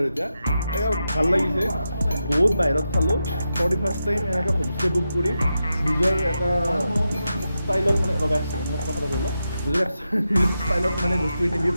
এতিয়া ভাল লাগিছে বহুত বাহিৰত খালোঁ ফাৰ্ষ্ট টাইম এনেকৈ হোমষ্টে বুক কৰি নিজৰ এটা ষ্টাইলত মানে মোক কথাটো কৰিলোঁ নিজৰ ষ্টাইলত মানে বস্তুখিনি দি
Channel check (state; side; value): inverted; both; correlation -0.88